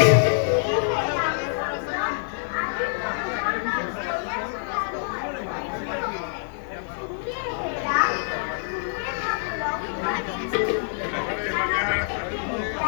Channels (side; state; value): right; silent; 61 dB below the other